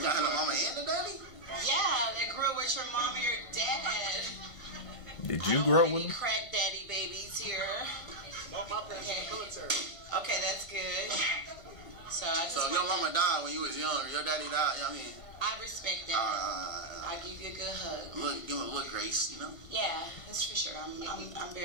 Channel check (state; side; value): late; right; 1.5 ms